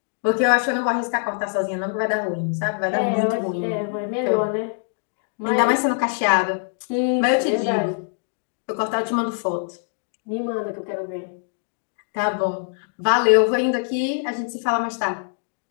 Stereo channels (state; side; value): silent; right; digital silence